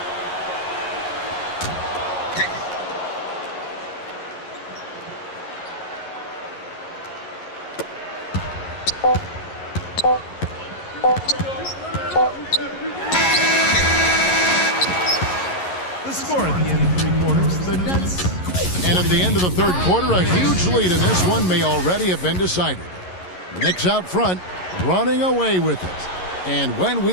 The score at the end of 3 quarters, the Nets. And at the end of the third quarter, a huge lead in this one may already have been decided. The Knicks out front, running away with it. And when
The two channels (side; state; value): right; late; 11 ms